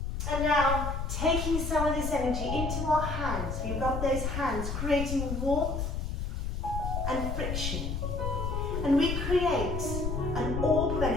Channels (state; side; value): noise; left; rumble, 3 dB below the sound